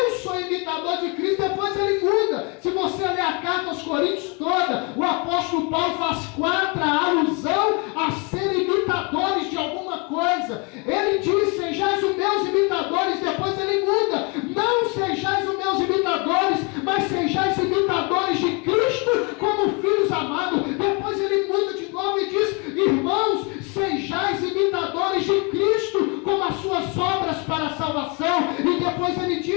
sou imitador de Cristo. Depois ele muda. Se você ler a carta aos Coríntios toda, o apóstolo Paulo faz 4 alusão a ser imitadores de alguma coisa. Ele diz, sejais os meus imitadores. Depois ele muda, não sejais os meus imitadores, mas sejais imitadores de Cristo como filhos amados. Depois ele muda de novo e diz, irmãos, sejais imitadores de Cristo como as suas obras para a salvação. E depois ele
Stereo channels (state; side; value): quieter; right; 31.7 dB